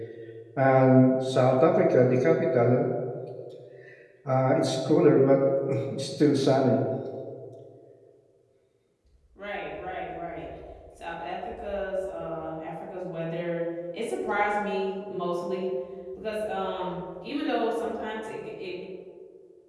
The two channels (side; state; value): both; identical; correlation 1.00